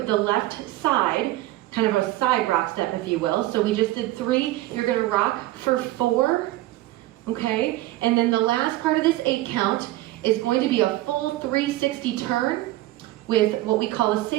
the left side kind of a side rock step, if you will. So we just did 3, you're gonna rock for 4, okay? And then the last part of this 8 count is going to be a full 360 turn with what we call a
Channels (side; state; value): left; quieter; 16.7 dB